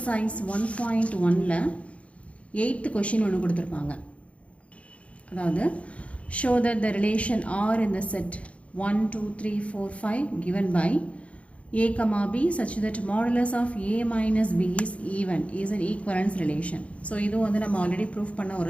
1.1ல் 8th கொஷின் ஒன்று கொடுத்துருப்பாங்க. அதாவது show that the relation R in the set 1, 2, 3, 4, 5 given by A, B such that modulus of A minus B is even is an equivalence relation. So இதுவும் வந்து நம்ம ஆல்ரெடி ப்ரூஃப் பண்ண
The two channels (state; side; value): late; right; 0.063 ms